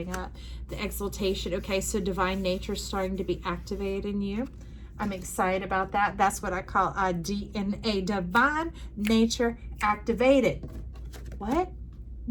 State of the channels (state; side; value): identical; both; correlation 1.00